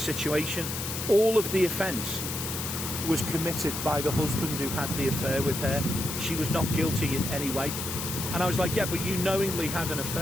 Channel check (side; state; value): left; noise; hiss, 5 dB below the sound